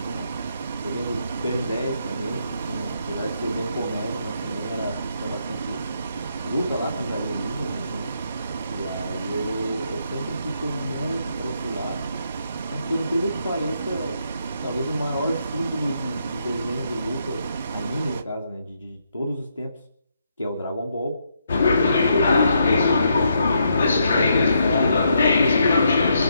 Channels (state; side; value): inverted; both; correlation -0.77